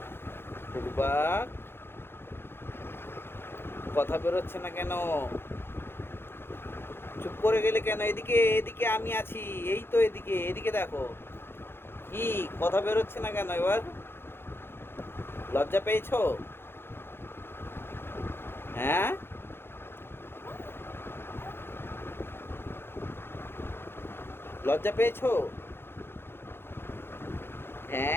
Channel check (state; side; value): late; right; 0.11 ms